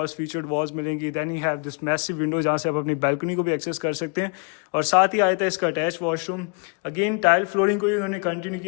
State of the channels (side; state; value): right; quieter; 36.2 dB